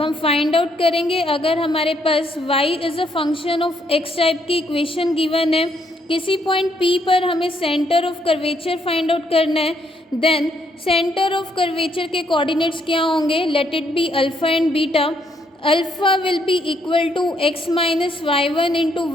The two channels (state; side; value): normal; both; correlation 0.72